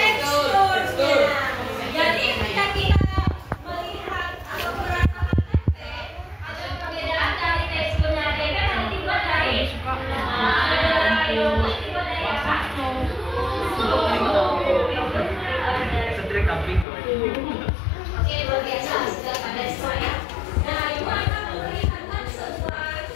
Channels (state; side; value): drops out; right; at 16.9 s